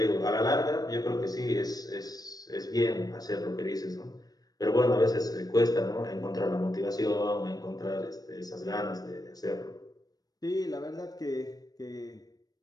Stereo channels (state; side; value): late; right; 0.19 ms